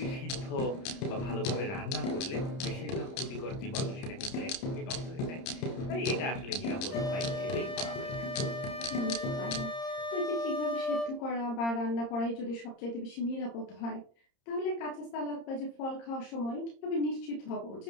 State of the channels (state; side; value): late; right; 30 ms